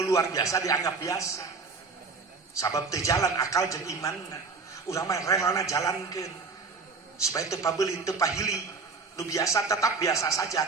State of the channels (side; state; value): left; quieter; 4.4 dB